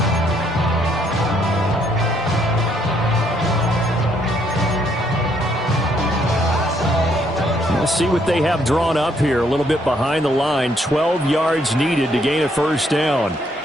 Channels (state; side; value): normal; both; correlation 0.70